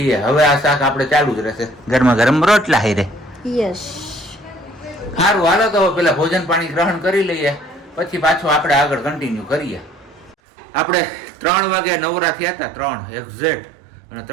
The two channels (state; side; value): drops out; left; at 10.4 s